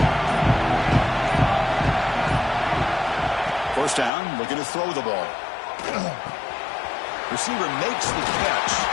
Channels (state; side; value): drops out; right; at 4.1 s